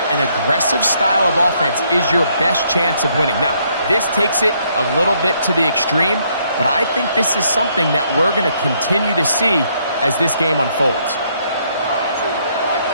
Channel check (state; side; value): inverted; both; correlation -0.70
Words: an aggressive style of offense is your best chance of winning. Now, this takes it a little bit to the extreme, but I think this is something that we're going to continue to see as this game unfolds.